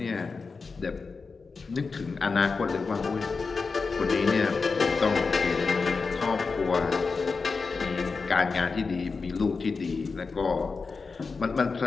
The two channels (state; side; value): quieter; right; 4.5 dB